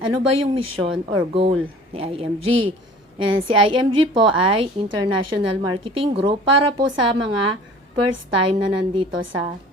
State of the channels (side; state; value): both; normal; correlation 0.46